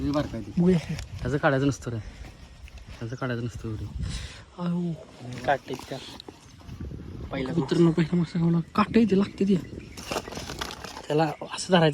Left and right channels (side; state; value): both; identical; correlation 1.00